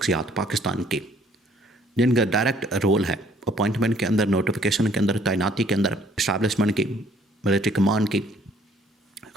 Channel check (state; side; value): normal; both; correlation 0.61